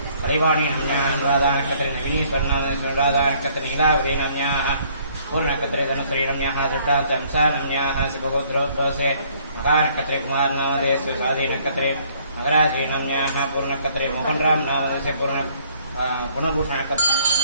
हरिवाणी नाम्न्याः नवीनी स्वर्णामदयस्य अनुराधानक्षत्रे नीलावरी नाम्न्याः पूर्णनक्षत्रे धनुश्री नाम्न्याः दृष्टान्त अंसा नाम्न्याः सुबहोत्रोत्सवस्य महानक्षत्रे कुमारनामदयस्य स्वाधी नक्षत्रे मकराजी नाम्न्याः पूर्णनक्षत्रे मोहनराम नामदयस्य पुनर्भूषणनक्षत्रे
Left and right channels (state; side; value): inverted; both; correlation -0.62